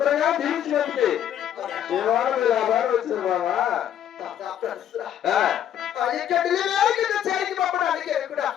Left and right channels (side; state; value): right; quieter; 10.3 dB